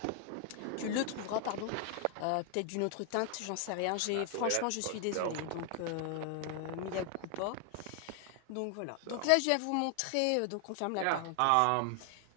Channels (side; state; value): both; different; correlation 0.00